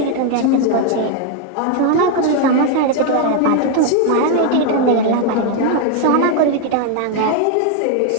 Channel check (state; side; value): different; both; correlation 0.01